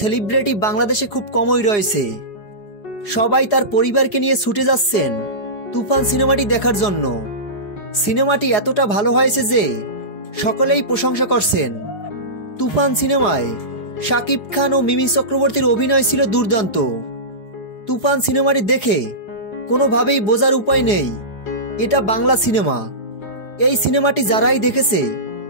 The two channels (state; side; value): late; right; 4.8 ms